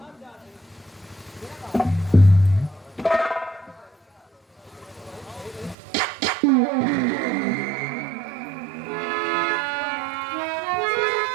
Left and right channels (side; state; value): left; drops out; at 5.8 s